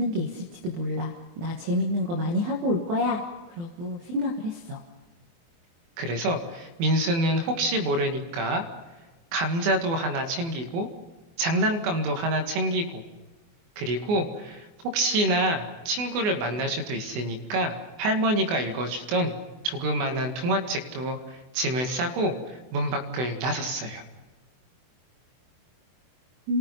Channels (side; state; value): left; late; 24 ms